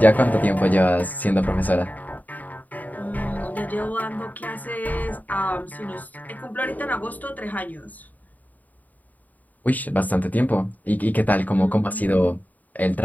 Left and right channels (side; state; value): right; late; 0.079 ms